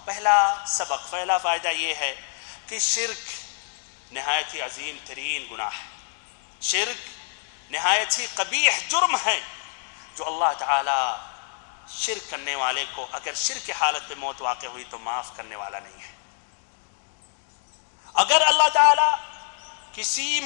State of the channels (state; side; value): silent; right; digital silence